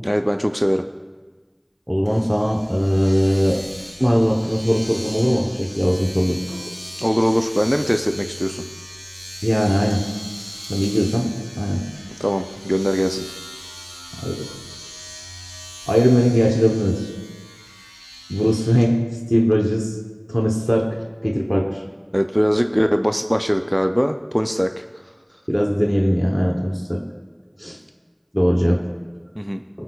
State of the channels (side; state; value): both; identical; correlation 1.00